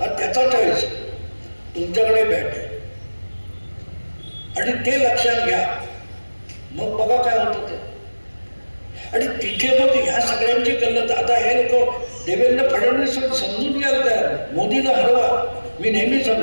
त्याचा चॉईस. तुमच्याकडे बॅट आहे आणि ते लक्षात घ्या. मग बघा काय होतं ते. आणि तिथे मग ह्या सगळ्यांची गल्लत. आता हे लोक देवेंद्र फडणवीस समजून घ्यायला तयार, मोदीला हरवा. मी नेहमी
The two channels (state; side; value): inverted; both; correlation -1.00